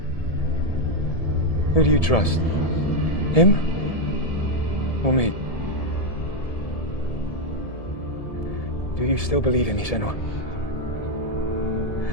Who do you trust? Him? Or me? Do you still believe in me, Senua?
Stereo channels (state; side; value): late; right; 1.7 ms